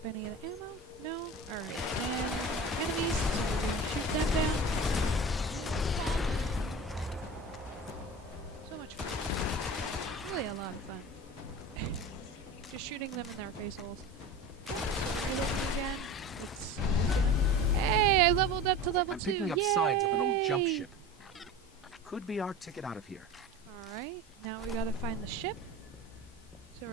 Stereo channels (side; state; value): both; normal; correlation 0.33